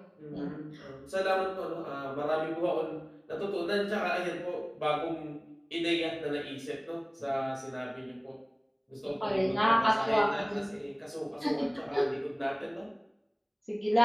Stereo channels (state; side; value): identical; both; correlation 1.00